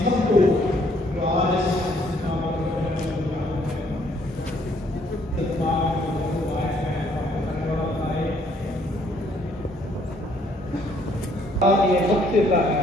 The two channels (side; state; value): both; normal; correlation 0.65